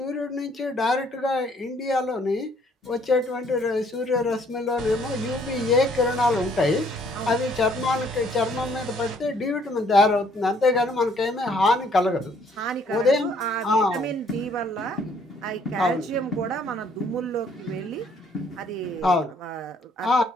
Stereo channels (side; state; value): both; normal; correlation 0.63